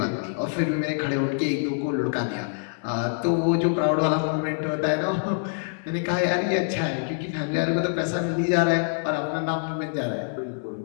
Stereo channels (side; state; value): right; silent; digital silence